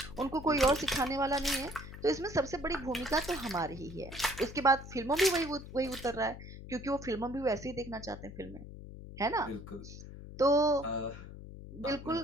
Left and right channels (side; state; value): left; noise; hum, 13 dB below the sound